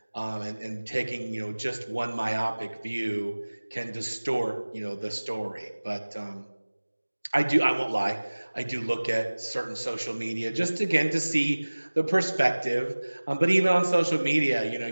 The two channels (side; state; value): both; inverted; correlation -1.00